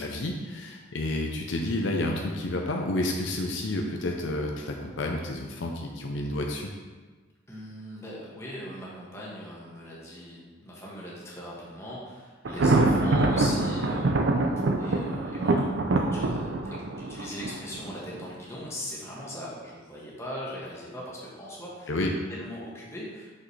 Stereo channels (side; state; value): both; normal; correlation 0.49